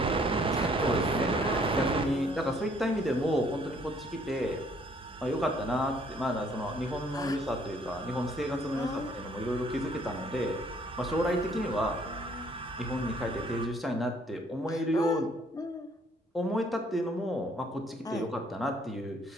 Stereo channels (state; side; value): normal; both; correlation 0.63